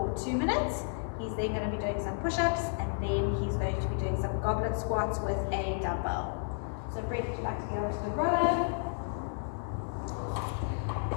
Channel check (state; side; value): silent; right; 56 dB below the other